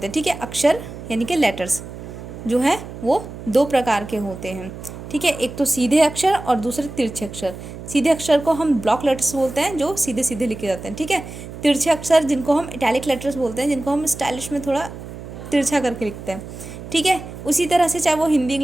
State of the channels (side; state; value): right; noise; hum, 12 dB below the sound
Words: हैं। ठीक है, अक्षर यानी कि लेटर्स जो है वो दो प्रकार के होते हैं। ठीक है, एक तो सीधे अक्षर और दूसरे तिरछे अक्षर। सीधे अक्षर को हम ब्लॉक लेटर्स बोलते हैं, जो सीधे सीधे लिखे जाते हैं। ठीक है, तिरछे अक्षर जिनको हम इटैलिक लेटर्स बोलते हैं, जिनको हम स्टाइलिश में थोड़ा तिरछा करके लिखते हैं। ठीक है, उसी तरह से चाहे वो हिंदी